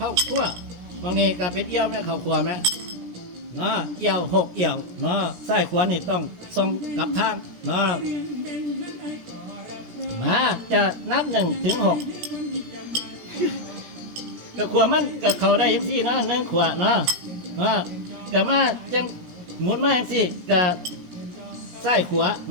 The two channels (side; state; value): left; late; 17 ms